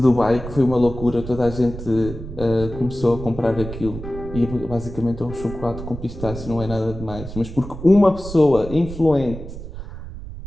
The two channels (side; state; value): right; noise; rumble, 11 dB below the sound